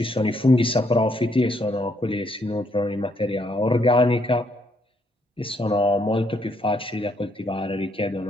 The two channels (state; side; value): normal; both; correlation 0.72